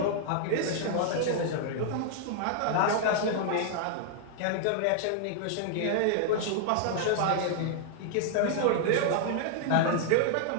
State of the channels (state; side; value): different; both; correlation -0.01